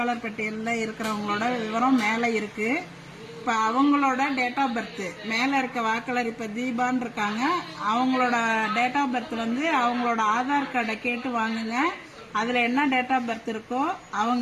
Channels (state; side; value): identical; both; correlation 1.00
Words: பட்டியலில் இருக்கிறவங்களோட விவரம் மேல இருக்கு. இப்ப அவங்களோட டேட் ஆஃப் பர்த் மேல இருக்க வாக்காளர் இப்ப தீபான்னு இருக்காங்க. அவங்களோட டேட் ஆஃப் பர்த் வந்து அவங்களோட ஆதார் கார்டை கேட்டு வாங்குங்க. அதுல என்ன டேட் ஆஃப் பர்த் இருக்கோ